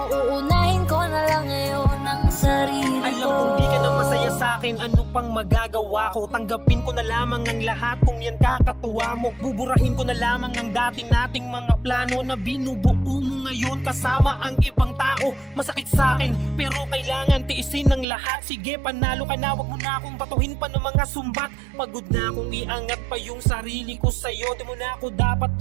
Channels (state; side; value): drops out; left; at 18.1 s